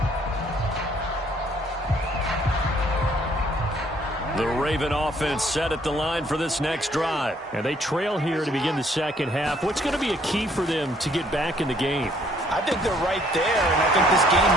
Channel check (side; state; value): both; normal; correlation 0.64